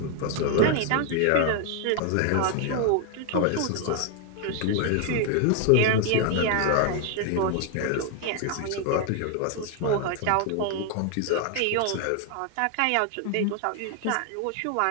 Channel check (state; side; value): different; both; correlation 0.00